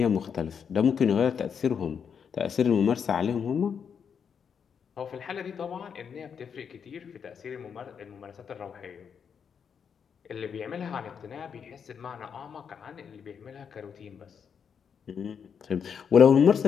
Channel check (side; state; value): right; quieter; 7.0 dB